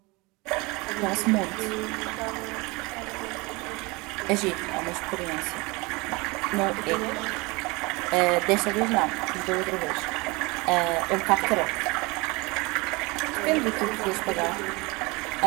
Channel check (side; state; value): left; quieter; 25.5 dB